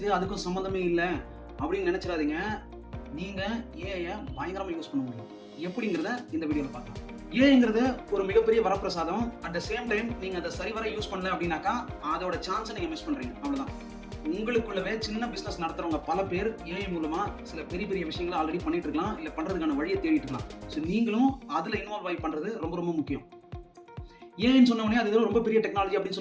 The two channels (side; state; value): both; identical; correlation 1.00